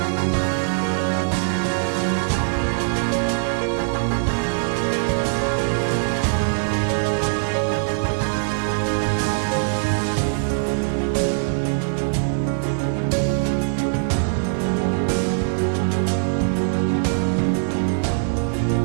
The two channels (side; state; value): left; silent; digital silence